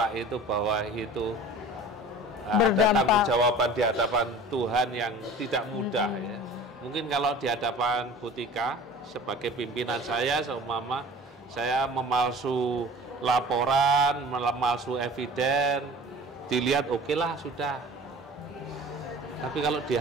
itu bahwa itu ada tanggung jawaban di hadapan Tuhan yang tidak mudah ya. Mungkin kalau di hadapan Butika sebagai pimpinan saya, seumpama saya memalsu laporan, memalsu eviden, dilihat oke lah sudah. Tapi kalau di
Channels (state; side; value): normal; both; correlation 0.42